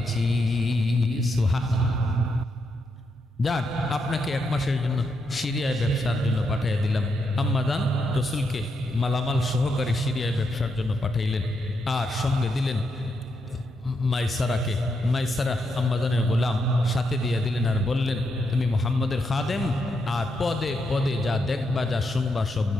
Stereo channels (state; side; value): normal; both; correlation 0.81